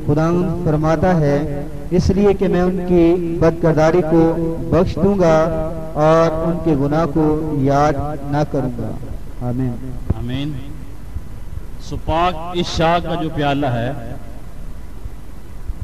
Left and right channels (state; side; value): identical; both; correlation 1.00